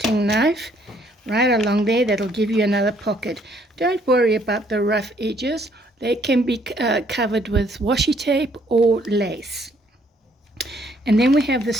knife right along there. That'll give you another pocket. Don't worry about the rough edges. They can be covered with washi tape or lace. And then we have the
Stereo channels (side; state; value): both; normal; correlation 0.66